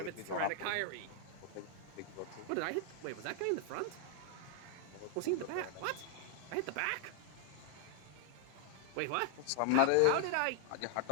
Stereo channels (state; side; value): different; both; correlation 0.00